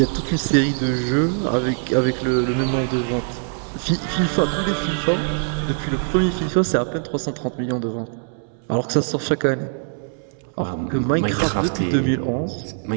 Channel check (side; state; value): left; silent; 60 dB below the other